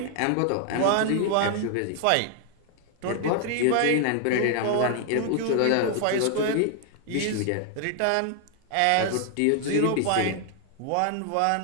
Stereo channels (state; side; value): different; both; correlation 0.00